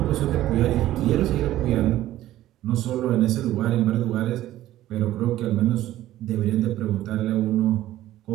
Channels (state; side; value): quieter; left; 14.2 dB